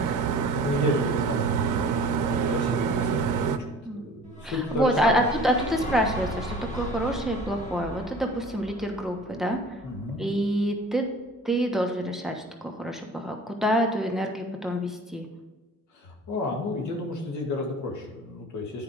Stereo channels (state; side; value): normal; both; correlation 0.44